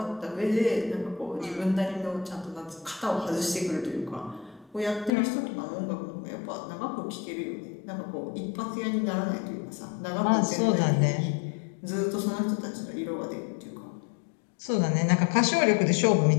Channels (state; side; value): drops out; right; at 5.1 s